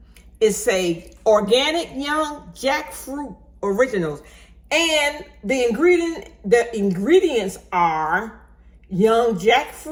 It's a organic young jackfruit originals. And the ingredients are young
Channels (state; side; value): identical; both; correlation 1.00